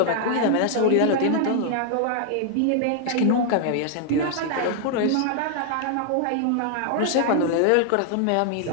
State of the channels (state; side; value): different; both; correlation 0.00